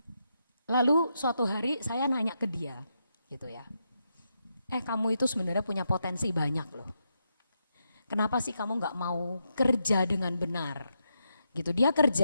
Lalu suatu hari saya nanya ke dia gitu ya. Kamu itu sebenarnya punya potensi banyak loh. Kenapa sih kamu gak mau kerja dengan benar? Gitu, dia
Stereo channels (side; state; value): both; inverted; correlation -0.83